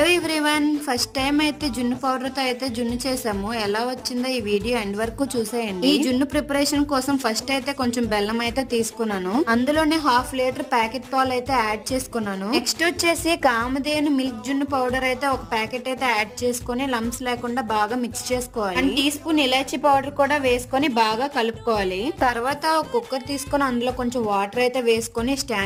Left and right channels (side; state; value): both; identical; correlation 1.00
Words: ఎవ్రీవన్, ఫస్ట్ టైం అయితే జున్ను పౌడర్ తో అయితే జున్ను చేసాము. ఎలా వచ్చిందో ఈ వీడియో ఎండ్ వరకు చూసేయండి. ఈ జున్ను ప్రిపరేషన్ కోసం ఫస్ట్ అయితే కొంచెం బెల్లం అయితే తీసుకున్నాను. అందులోనే హాఫ్ లీటర్ ప్యాకెట్ పాలు అయితే యాడ్ చేసుకున్నాను. నెక్స్ట్ వచ్చేసి కామధేను మిల్క్ జున్ను పౌడర్ అయితే ఒక ప్యాకెట్ అయితే యాడ్ చేసుకుని లంప్స్ లేకుండా బాగా మిక్స్ చేసుకోవాలి. అండ్ టీ స్పూన్ ఇలాచీ పౌడర్ కూడా వేసుకొని బాగా కలుపుకోవాలి. తర్వాత ఒక కుక్కర్ తీసుకొని అందులో కొంచెం వాటర్ అయితే వేసుకొని